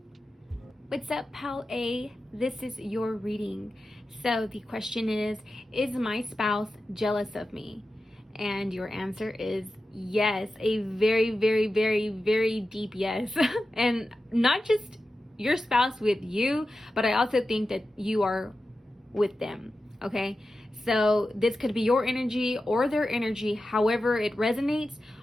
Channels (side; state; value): both; normal; correlation 0.92